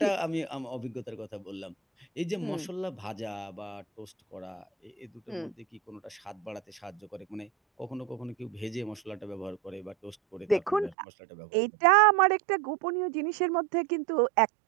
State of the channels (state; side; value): drops out; left; at 11.0 s